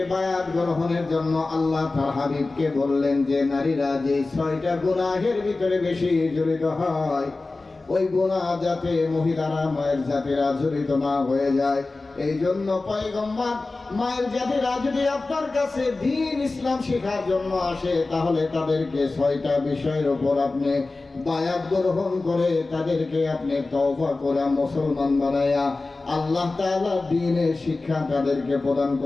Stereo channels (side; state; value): right; quieter; 3.4 dB